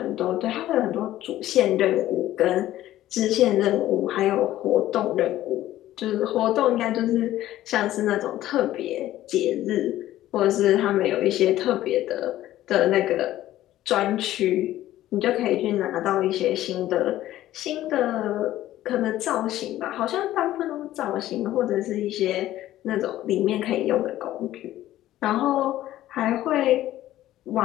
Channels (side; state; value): right; quieter; 14.1 dB